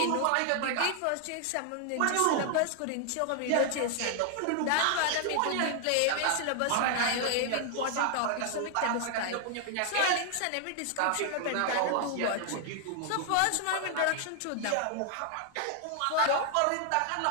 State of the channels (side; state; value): both; different; correlation 0.00